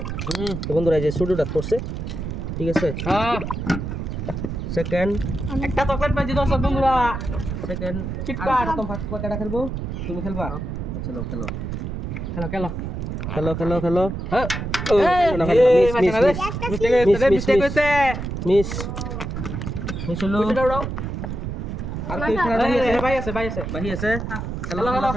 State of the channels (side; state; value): right; noise; rumble, 5 dB below the sound